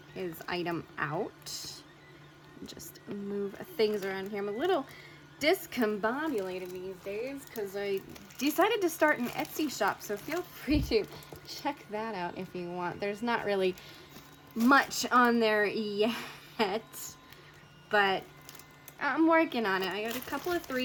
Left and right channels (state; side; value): identical; both; correlation 1.00